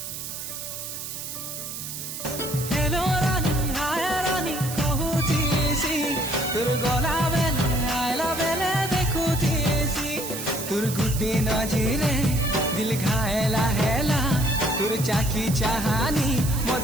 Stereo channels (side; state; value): right; noise; hiss, 8 dB below the sound